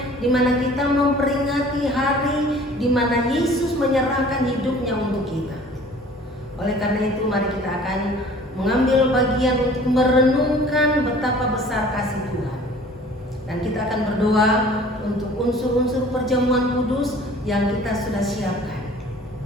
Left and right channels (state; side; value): normal; both; correlation 0.49